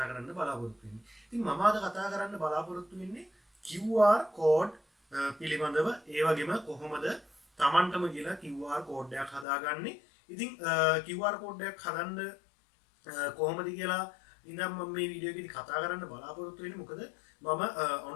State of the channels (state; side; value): drops out; right; at 9.5 s